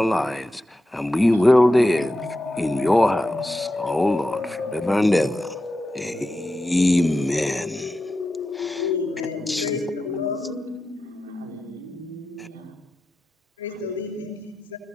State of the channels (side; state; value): both; normal; correlation 0.91